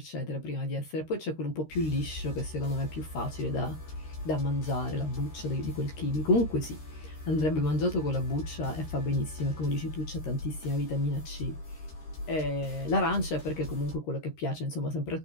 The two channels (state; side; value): late; right; 13 ms